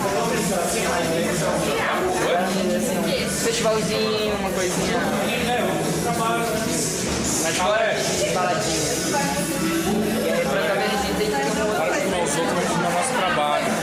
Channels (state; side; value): identical; both; correlation 1.00